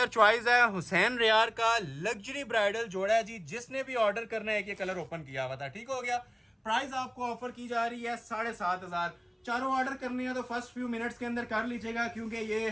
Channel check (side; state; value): both; identical; correlation 1.00